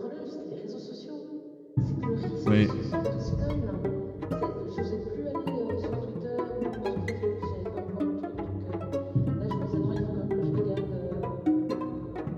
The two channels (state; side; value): identical; both; correlation 1.00